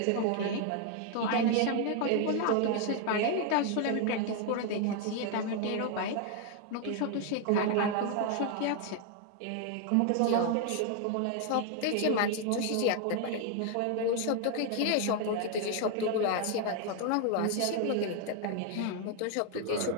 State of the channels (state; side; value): different; both; correlation 0.01